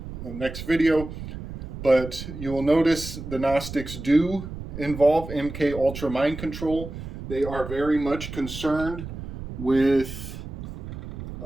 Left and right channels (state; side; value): noise; right; rumble, 10 dB below the sound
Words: video. But you will notice the Gnostics do involve MK Ultra mind control. They are very much concerned with